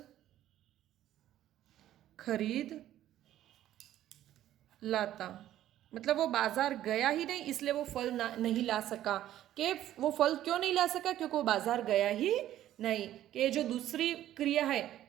खरीद लाता। मतलब वो बाजार गया ही नहीं इसलिए वो फल नहीं ला सका। कि वो फल क्यों नहीं ला सका, क्योंकि वो बाजार गया ही नहीं। कि जो दूसरी क्रिया है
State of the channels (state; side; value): quieter; left; 12.7 dB